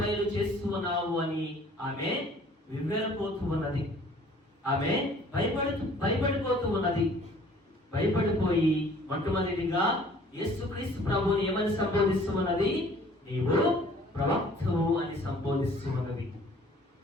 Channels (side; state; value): both; normal; correlation 0.54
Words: చేస్తూ ఉన్నావు అని ఆమె వివరపోతూ ఉన్నది. ఆమె భయపడిపోతూ ఉన్నది. భయపడిపోయి మొట్టమొదటిగా యేసుక్రీస్తు ప్రభువుని ఏమని సంబోధిస్తూ ఉన్నది? నీవు ప్రవక్తవు అని సంబోధిస్తూ ఉన్నది.